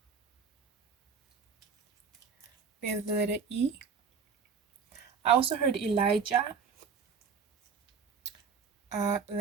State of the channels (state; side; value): quieter; left; 5.8 dB